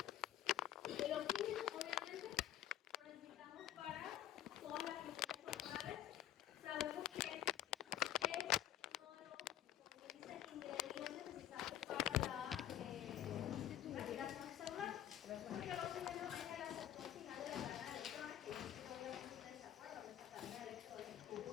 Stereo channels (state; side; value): quieter; right; 11.5 dB